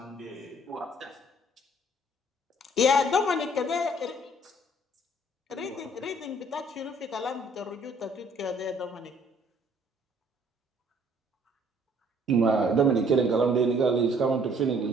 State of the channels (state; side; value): normal; both; correlation 0.59